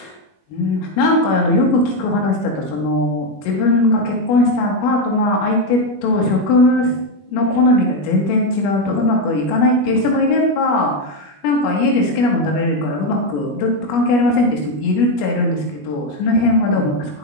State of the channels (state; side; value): late; right; 21 ms